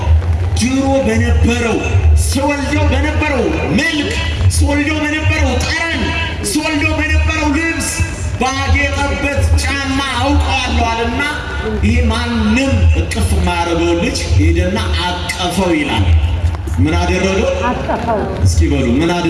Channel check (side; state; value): both; identical; correlation 1.00